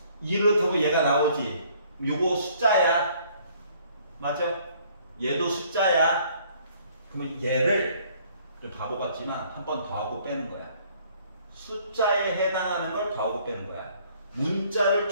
2를 넣다고 얘가 나오지. 요거 숫자야. 맞아? 얘도 숫자야. 그러면 얘를 좀 바보 같지만 한 번 더하고 빼는 거야. 숫자에 해당하는 걸 더하고 빼는 거야. 문자를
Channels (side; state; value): both; inverted; correlation -0.61